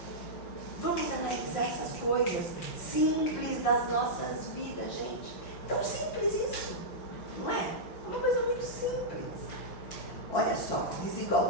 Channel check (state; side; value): late; right; 5.6 ms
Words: Vamos analisar essas coisas simples das nossas vidas, gente. Tão simples isso, não é? Uma coisa muito simples. Olha só,